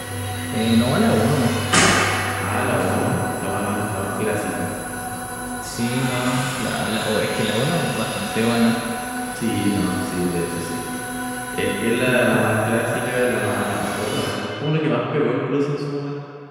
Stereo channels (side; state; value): both; identical; correlation 1.00